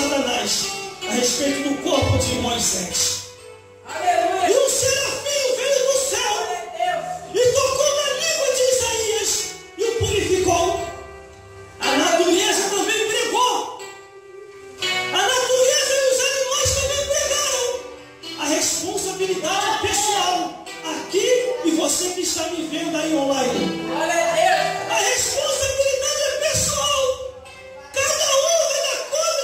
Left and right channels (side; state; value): both; identical; correlation 1.00